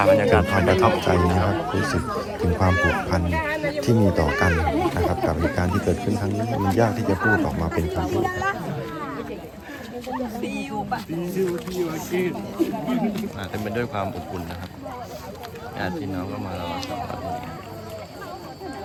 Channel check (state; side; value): identical; both; correlation 1.00